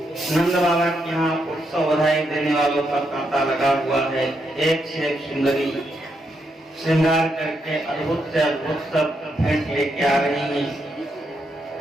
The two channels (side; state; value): both; normal; correlation 0.80